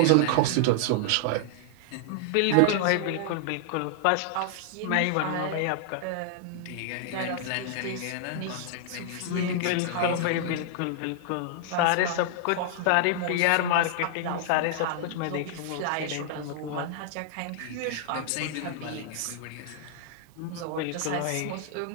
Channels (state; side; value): different; both; correlation -0.01